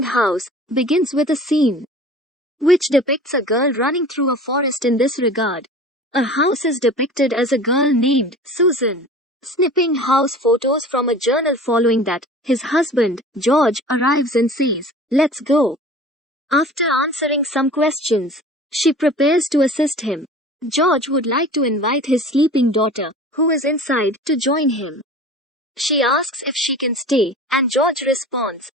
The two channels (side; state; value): both; normal; correlation 0.41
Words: House, begins with a scene which depicts a girl running through a forest. In this regard, a house is depicted as a girl named Susan, snipping house photos from a journal. Following that, his husband, George, arrives and says, "Let's go." After answering some questions, she prepares to assist him. George would like to invite his sleeping daughter, who is inside, to join him. She asks if she can stay, and George responds,